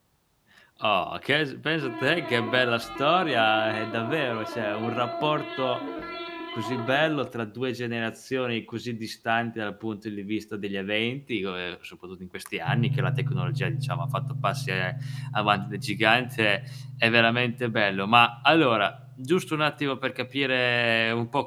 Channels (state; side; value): identical; both; correlation 1.00